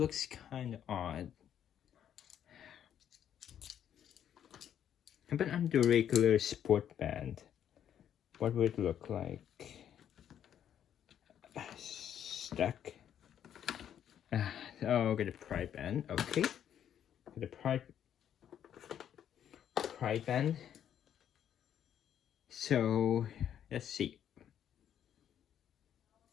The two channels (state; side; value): quieter; right; 9.7 dB